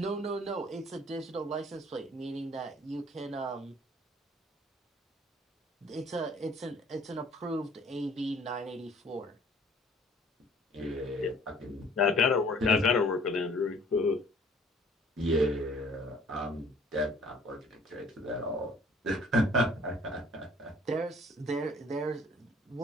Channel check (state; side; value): normal; both; correlation 0.55